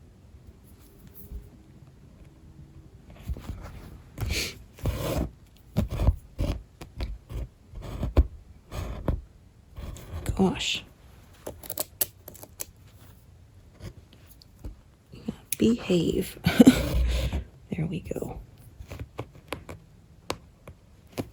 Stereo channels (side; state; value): both; identical; correlation 1.00